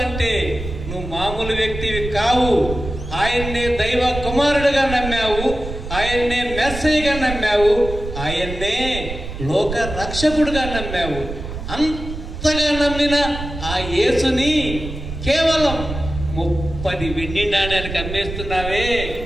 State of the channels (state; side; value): noise; right; rumble, 8 dB below the sound